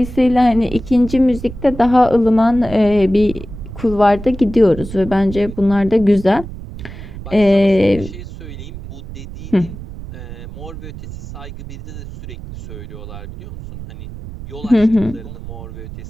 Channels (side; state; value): right; noise; rumble, 12 dB below the sound